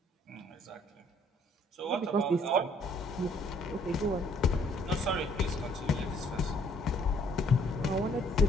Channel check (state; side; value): normal; both; correlation 0.63